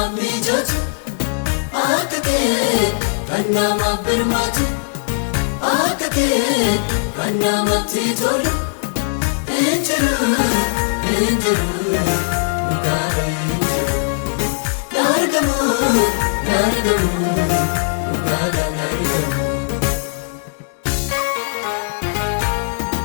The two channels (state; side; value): silent; right; 67 dB below the other